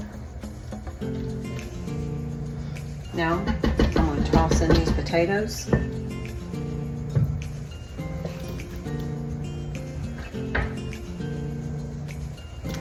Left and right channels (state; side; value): identical; both; correlation 1.00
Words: Now, I'm going to toss in these potatoes.